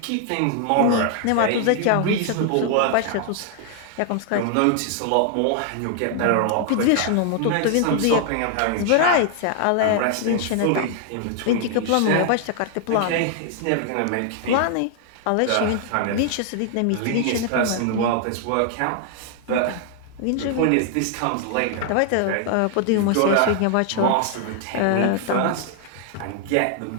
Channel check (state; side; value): different; both; correlation 0.00